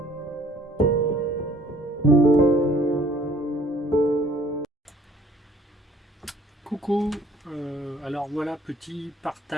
alors voilà, petit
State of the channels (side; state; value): both; normal; correlation 0.57